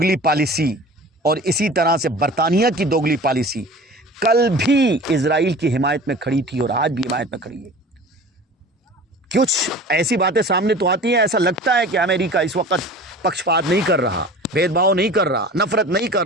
پالیسی اور اسی طرح سے برطانیہ کی دوگلی پالیسی کل بھی اسرائیل کی حمایت میں کھڑی تھی اور آج بھی حمایت میں کھڑی ہے. کچھ ایسی باتیں سامنے تو آتی ہیں, ایسا لگتا ہے کہ امریکہ اس وقت پکشپات نہیں کر رہا, بھید بھاؤ نہیں کر رہا, نفرت نہیں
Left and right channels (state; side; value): normal; both; correlation 0.40